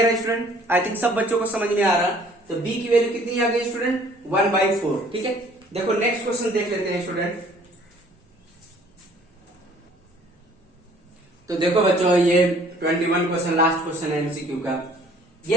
है स्टूडेंट? आई थिंक सब बच्चों को समझ में आ रहा। तो b की वैल्यू कितनी आ गई स्टूडेंट, 1/4। ठीक है, देखो नेक्स्ट क्वेश्चन देख लेते हैं स्टूडेंट। तो देखो बच्चों, ये 21 क्वेश्चन, लास्ट क्वेश्चन है एमसीक्यू का।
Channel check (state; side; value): normal; both; correlation 0.56